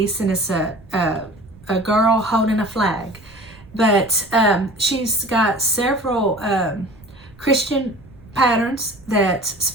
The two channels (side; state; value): right; noise; rumble, 23 dB below the sound